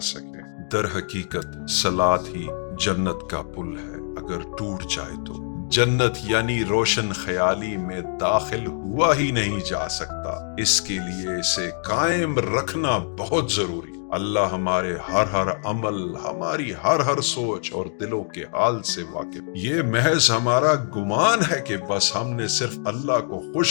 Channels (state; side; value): silent; right; 63 dB below the other